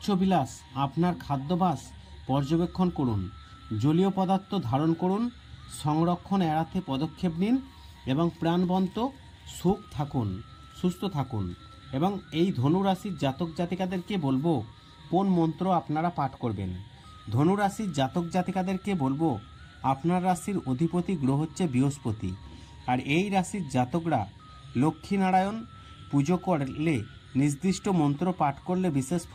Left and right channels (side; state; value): both; identical; correlation 1.00